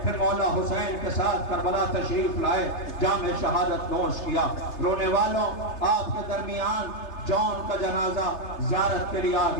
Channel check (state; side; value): late; right; 3.3 ms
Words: پھر مولا حسین کے ساتھ کربلا تشریف لائے، جام شہادت نوش کیا۔ رونے والوں، آپ کے درمیان جون کا جنازہ زیارت کے لیے آ